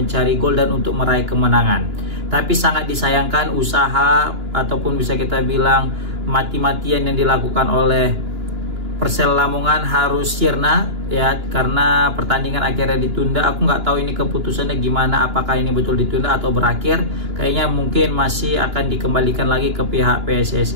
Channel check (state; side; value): late; left; 2.9 ms